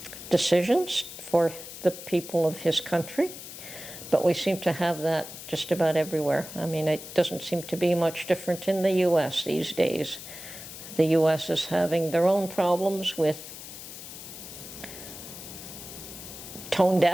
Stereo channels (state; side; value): noise; left; hiss, 12 dB below the sound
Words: decisions for the people of his country. But we seem to have that just about everywhere. I mean, it doesn't seem to be much different in the U.S. these days. The U.S. is having their own problems with tone